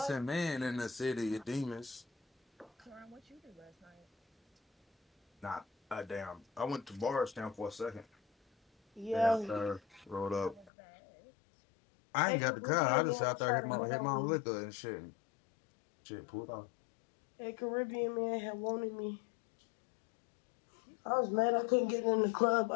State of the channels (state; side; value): drops out; right; at 10.7 s